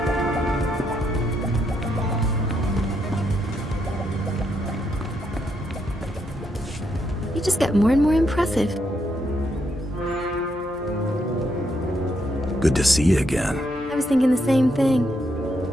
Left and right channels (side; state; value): both; normal; correlation 0.78